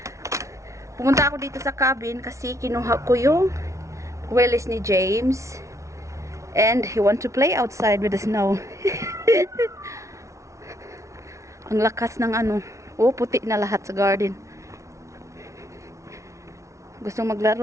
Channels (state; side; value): late; left; 0.14 ms